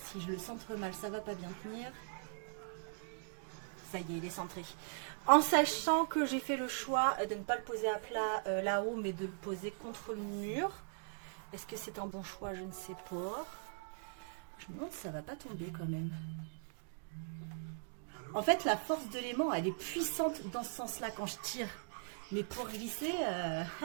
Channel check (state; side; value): silent; left; digital silence